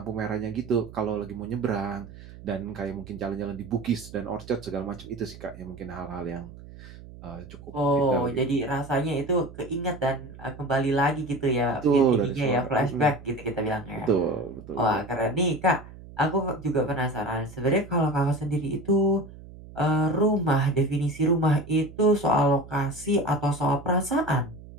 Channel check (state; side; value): noise; right; hum, 17 dB below the sound